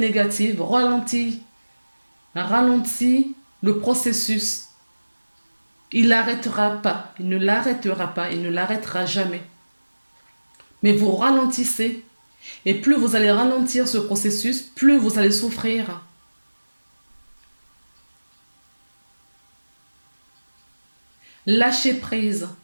ralentit le processus. Il n'arrêtera pas, il ne l'arrêtera pas, il ne l'arrêtera jamais. Mais vous ralentissez. Et plus vous allez ralentir ce processus, plus vous allez souffrir. Lâchez prise.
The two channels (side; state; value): both; inverted; correlation -1.00